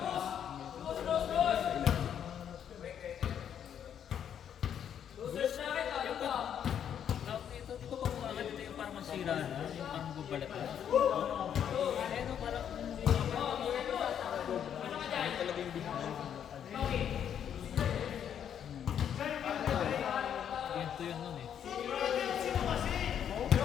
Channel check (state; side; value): quieter; right; 9.0 dB